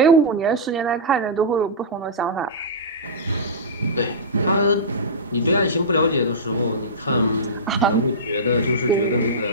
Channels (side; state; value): both; normal; correlation -0.15